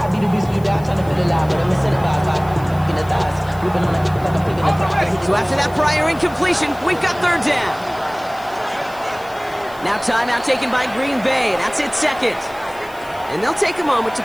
So after that prior incompletion, we've got 3rd down. Now timeout taken by Green Bay. That's it, 2nd. And they'll take a moment to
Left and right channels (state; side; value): noise; left; hiss, 23 dB below the sound